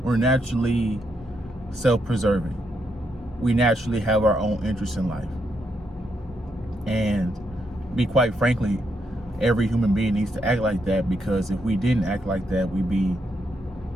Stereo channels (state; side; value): normal; both; correlation 0.79